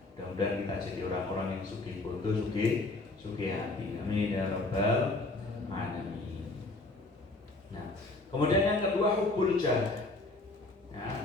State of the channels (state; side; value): quieter; right; 3.0 dB